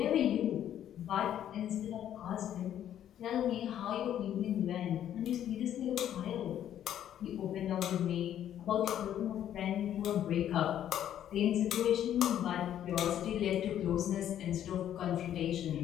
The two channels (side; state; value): right; quieter; 10.7 dB